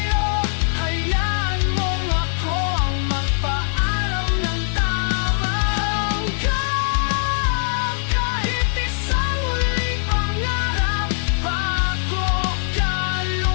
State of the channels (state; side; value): silent; right; digital silence